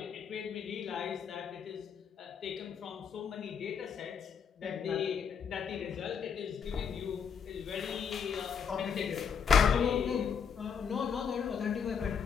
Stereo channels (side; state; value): right; quieter; 6.8 dB